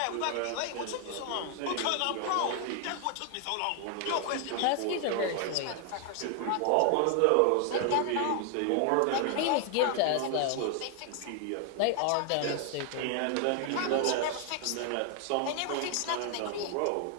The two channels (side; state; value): both; different; correlation 0.00